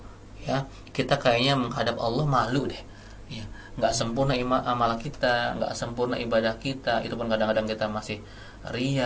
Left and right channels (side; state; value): both; identical; correlation 1.00